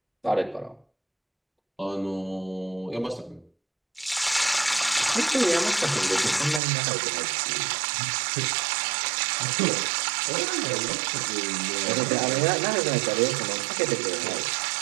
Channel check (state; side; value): drops out; left; at 6.6 s